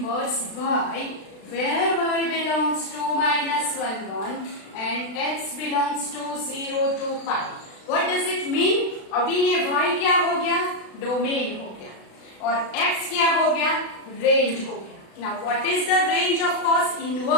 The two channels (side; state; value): right; late; 36 ms